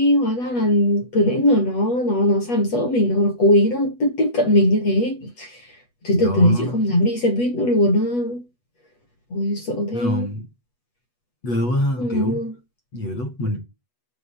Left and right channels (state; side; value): late; right; 8.2 ms